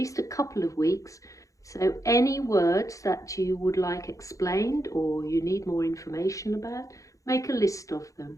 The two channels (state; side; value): late; right; 0.16 ms